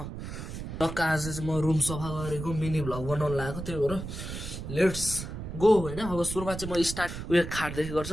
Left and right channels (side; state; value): right; noise; rumble, 8 dB below the sound